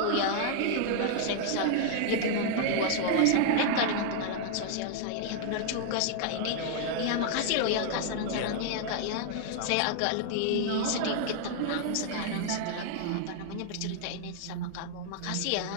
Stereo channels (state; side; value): different; both; correlation 0.00